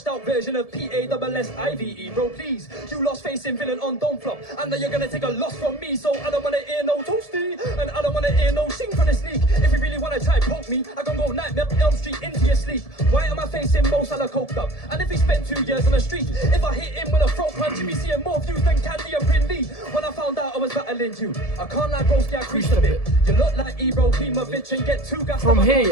out version of PASSIVE. Bro, please. You lost facing villain on Don't Flop. And then you're going to take a loss from me. So I don't want to hear no toasty. And I don't want to hear no sing from the sneak. If you really want to try poke me, I can go Nightmare Elm Street into your sleep. Why am I facing Mo Salah coked up? And if he spent 2 years on the street, if I hit him with a throat punch, you'd be seeing more views than Candy and Brindley. When I found out I was battling you, I can't lie, broski, I creased a bit. You look like Ebro, Klimovich, and get too gassed. From up, I here, can't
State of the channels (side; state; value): right; late; 1.7 ms